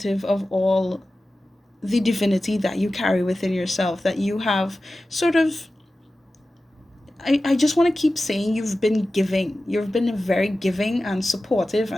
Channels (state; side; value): normal; both; correlation 0.95